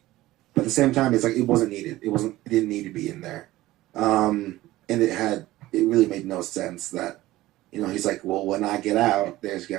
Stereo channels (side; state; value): left; quieter; 16.9 dB